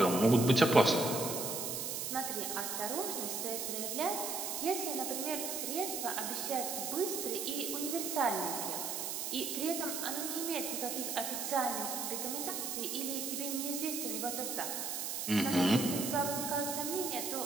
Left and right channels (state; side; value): noise; right; hiss, 3 dB below the sound